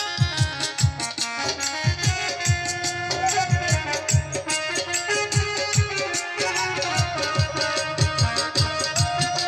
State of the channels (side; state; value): both; identical; correlation 1.00